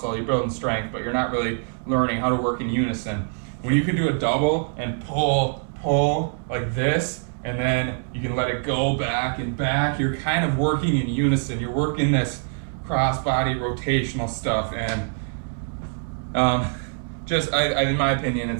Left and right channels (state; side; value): silent; left; 58 dB below the other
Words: you're building strength, but you're not really learning how to work in unison. When you can do a double and pull like this, and then you can let it go back and back, you're kind of working in unison. You're working this cross-body rotational stuff, and in my opinion,